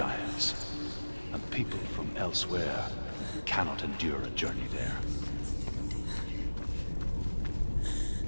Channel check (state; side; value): inverted; both; correlation -1.00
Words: And people from elsewhere cannot endure a journey there.